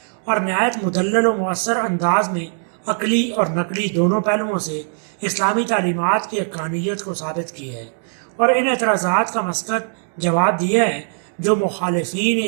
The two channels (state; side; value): silent; left; digital silence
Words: اور نہایت مدلل و مؤثر انداز میں عقلی اور نقلی دونوں پہلوؤں سے اسلامی تعلیمات کی حقانیت کو ثابت کیا ہے اور ان اعتراضات کا مسقط جواب دیا ہے جو مخالفین